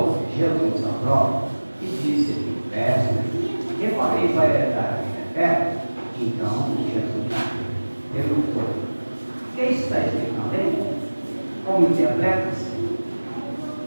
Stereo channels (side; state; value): both; inverted; correlation -1.00